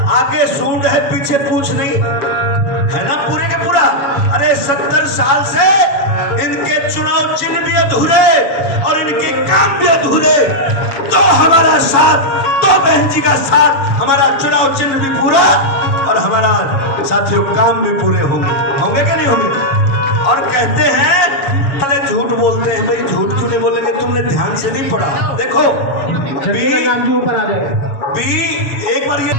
आगे सूंड है पीछे पूछ नहीं है ना, पूरे के पूरा। अरे 70 साल से इनके चुनाव चिन्ह भी अधूरे और इनके काम भी अधूरे, तो हमारा साथ, तो बहन जी का साथ, हमारा चुनाव चिन्ह भी पूरा और हमारा साथियों काम भी पूरे होंगे कि नहीं होंगे? और कहते हैं अरे झूठ बोलते हैं। भाई झूठ क्यों नहीं बोलेंगे? तुमने ध्यान से नहीं पढ़ा। देखो बी एक बार ये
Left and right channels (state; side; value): late; right; 6.7 ms